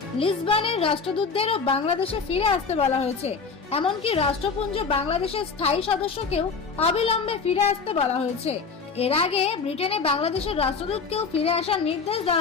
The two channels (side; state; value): right; quieter; 5.1 dB